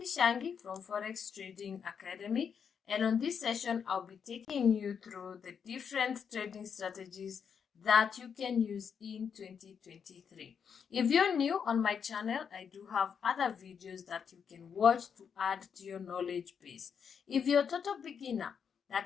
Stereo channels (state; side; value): quieter; right; 7.0 dB